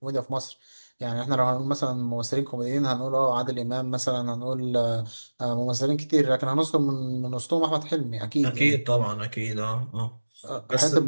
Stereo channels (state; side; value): inverted; both; correlation -1.00